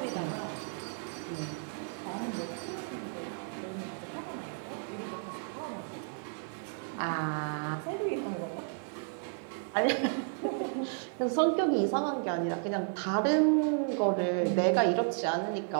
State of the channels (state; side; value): silent; left; 56 dB below the other